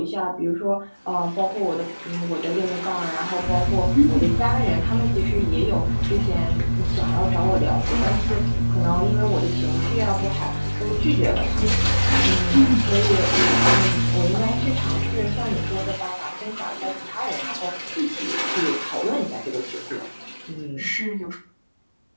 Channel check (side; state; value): both; inverted; correlation -1.00